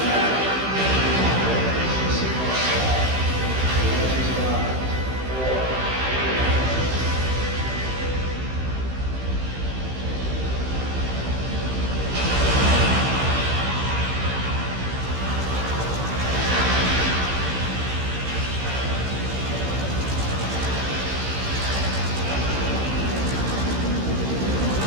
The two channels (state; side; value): late; left; 15 ms